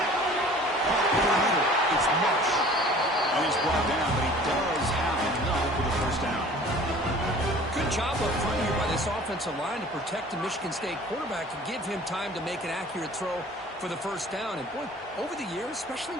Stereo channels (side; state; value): both; normal; correlation 0.47